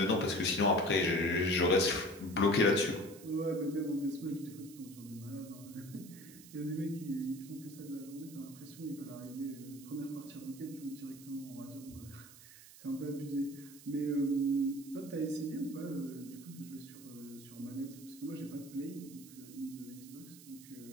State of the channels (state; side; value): noise; right; hiss, 18 dB below the sound